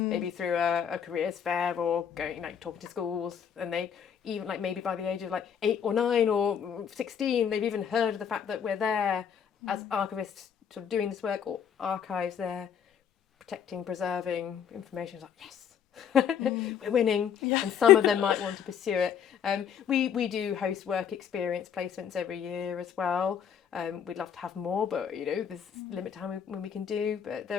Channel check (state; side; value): quieter; right; 8.1 dB